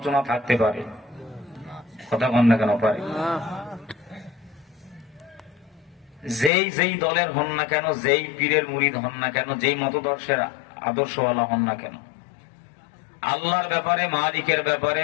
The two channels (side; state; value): right; drops out; at 6.5 s